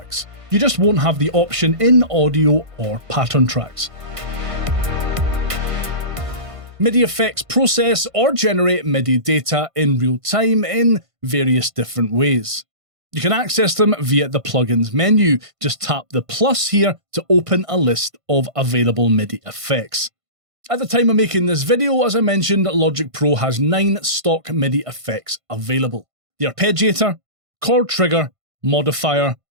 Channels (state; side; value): late; left; 1.5 ms